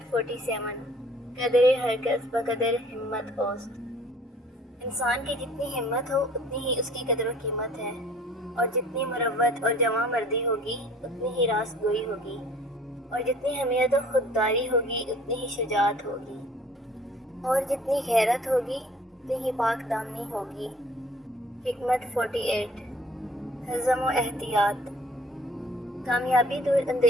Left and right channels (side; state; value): both; normal; correlation 0.53